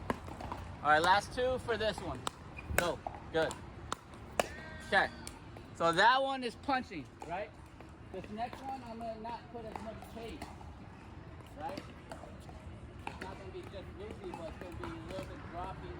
All right, last two for this one. Go. Good. Okay. So that one is punching, right? This next one, I'm going to not put as much tape, right? It's not going to be just loopy, but it's going to be a little bit dropping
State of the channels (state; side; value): identical; both; correlation 1.00